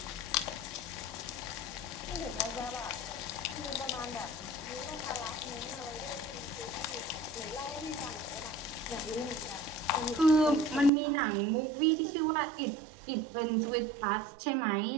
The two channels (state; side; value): drops out; left; at 10.9 s